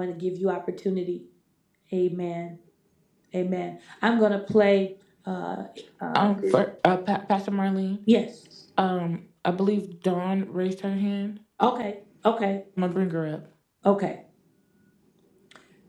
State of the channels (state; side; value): identical; both; correlation 1.00